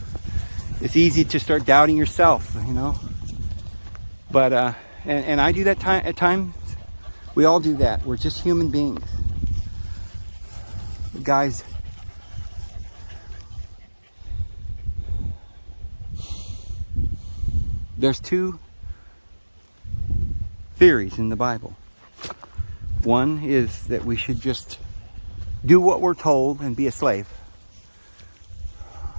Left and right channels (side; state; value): both; inverted; correlation -1.00